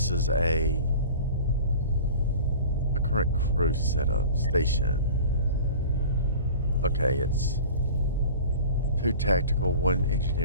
is a current crew setup station. Okay, it's 2 tactical, 1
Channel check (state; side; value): inverted; both; correlation -0.41